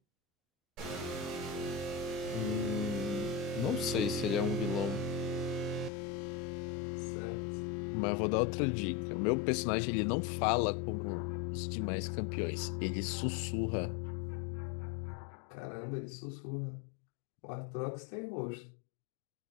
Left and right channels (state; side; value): drops out; right; at 5.9 s